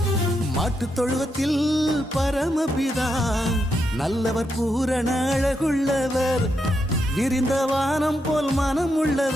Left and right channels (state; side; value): normal; both; correlation 0.82